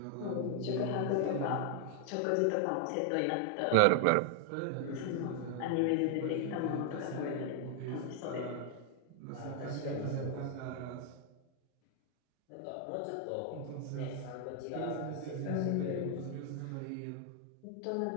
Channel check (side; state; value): both; different; correlation 0.01